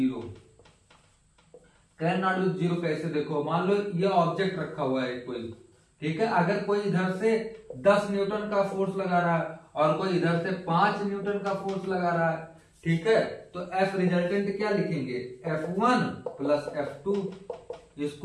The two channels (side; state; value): both; identical; correlation 1.00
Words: Can not be zero कैसे, देखो मान लो ये object रखा हुआ है कोई, ठीक है, अगर कोई इधर से 10 न्यूटन का फोर्स लगा रहा है और कोई इधर से 5 न्यूटन का फोर्स लगा रहा है, ठीक है, तो F रिजल्टेंट क्या लिखेंगे, F1 प्लस F2,